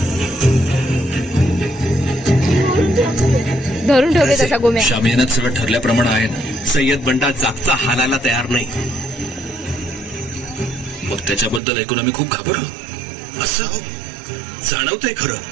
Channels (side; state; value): left; drops out; at 11.6 s